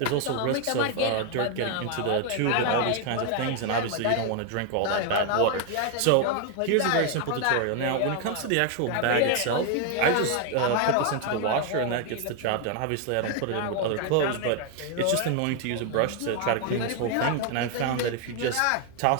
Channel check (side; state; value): both; different; correlation 0.01